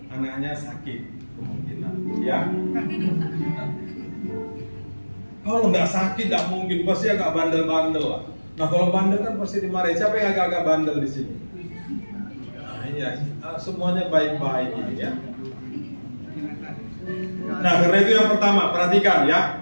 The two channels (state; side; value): inverted; both; correlation -1.00